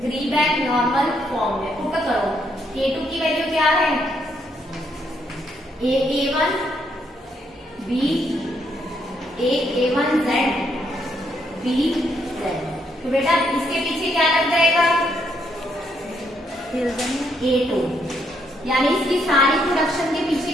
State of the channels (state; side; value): normal; both; correlation 0.74